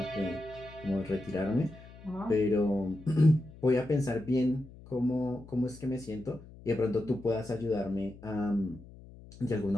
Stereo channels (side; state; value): left; noise; hum, 19 dB below the sound